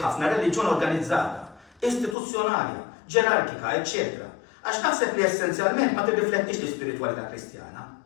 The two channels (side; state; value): right; drops out; at 2.1 s